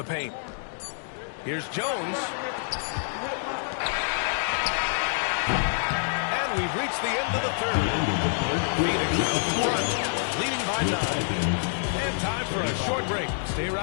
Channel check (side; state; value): right; silent; digital silence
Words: paint. Here's Jones. And we've reached the end of the third. Phoenix out front, leading by 9. And time for a short break. Stay